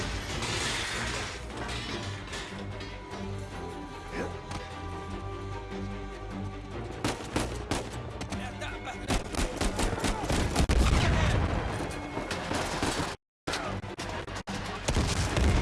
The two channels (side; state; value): both; identical; correlation 1.00